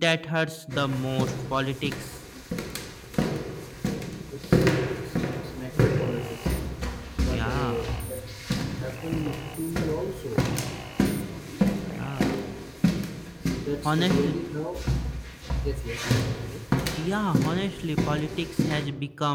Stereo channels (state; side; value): identical; both; correlation 1.00